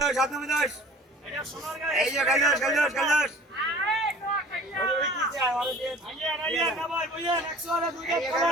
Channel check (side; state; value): both; normal; correlation 0.46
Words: এটা সোনার গায়ে এই যে গেল ওই কি চাই আর দিয়ে আইয়া না ভাই বুঝেন 100 আর 2